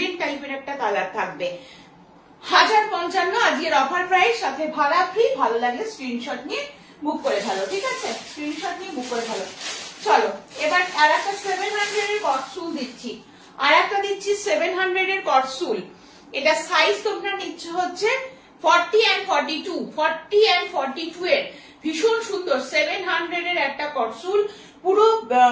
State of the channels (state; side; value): identical; both; correlation 1.00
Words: টাইপের একটা কালার থাকবে। 1055 আজকের অফার প্রাইস, সাথে ভাড়া ফ্রি। ভালো লাগলে স্ক্রিনশট নিয়ে বুক করে ফেলো। ঠিক আছে, স্ক্রিনশট নিয়ে বুক করে ফেলো। চলো এবার আর একটা 700 এর কটসুল দিচ্ছি। আর একটা দিচ্ছি 700 এর কটসুল। এটা সাইজ তোমরা নিচ্ছ হচ্ছে 40 and 42, 40 and 42 এর। ভীষণ সুন্দর 700 এর একটা কটসুল। পুরো